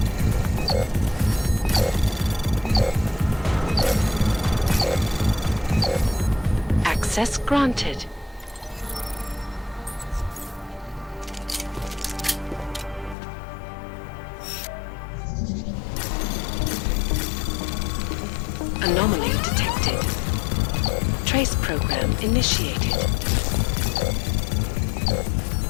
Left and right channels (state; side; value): drops out; right; at 13.2 s